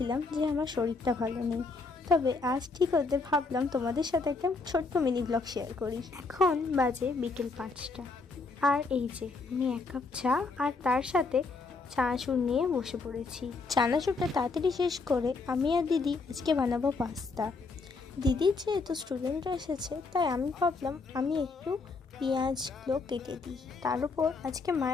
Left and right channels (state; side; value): quieter; right; 4.0 dB